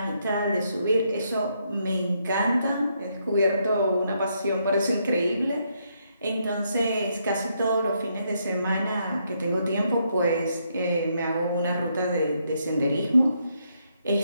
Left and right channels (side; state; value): both; inverted; correlation -0.76